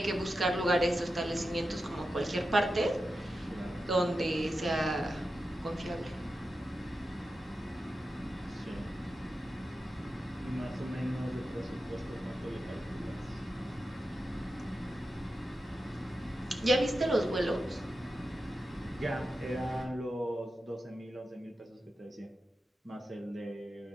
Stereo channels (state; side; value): normal; both; correlation 0.90